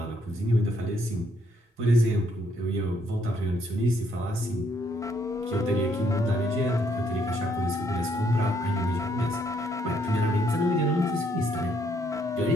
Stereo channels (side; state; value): both; normal; correlation 0.70